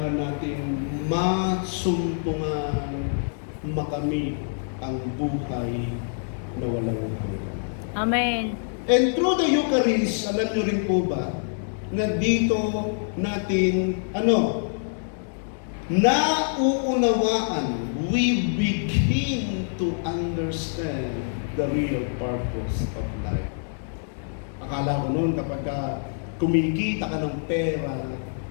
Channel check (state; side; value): silent; right; digital silence